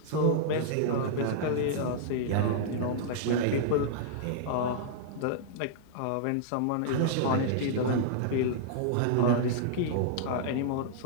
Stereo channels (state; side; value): different; both; correlation -0.01